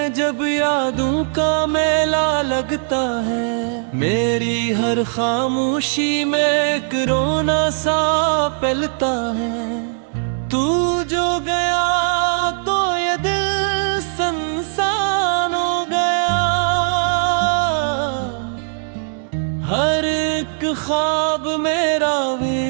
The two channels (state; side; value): silent; left; digital silence